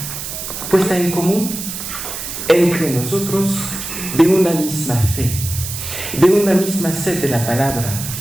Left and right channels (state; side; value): noise; right; hiss, 7 dB below the sound